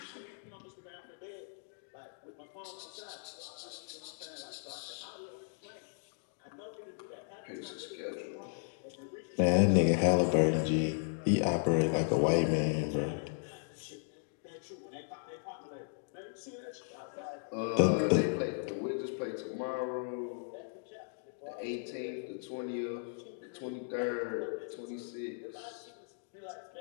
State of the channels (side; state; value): right; silent; digital silence